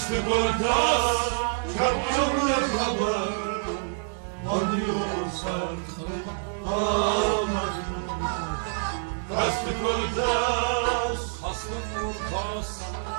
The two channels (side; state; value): left; silent; 60 dB below the other